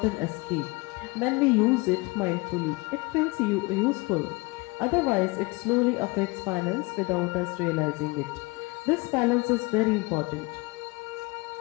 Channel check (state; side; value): quieter; right; 25.5 dB